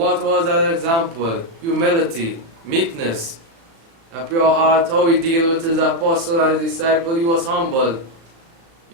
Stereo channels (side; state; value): left; late; 36 ms